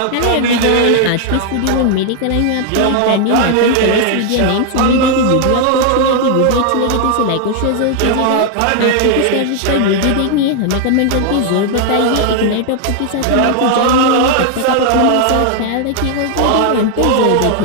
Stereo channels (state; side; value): different; both; correlation 0.00